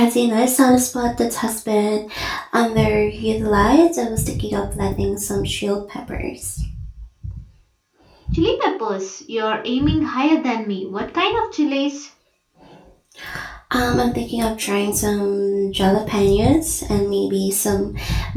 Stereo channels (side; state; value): both; identical; correlation 1.00